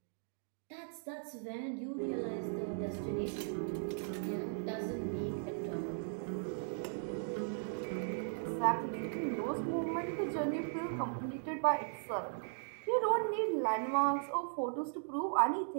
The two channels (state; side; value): silent; left; digital silence